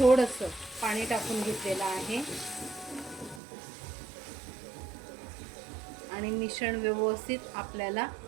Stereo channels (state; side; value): drops out; left; at 3.4 s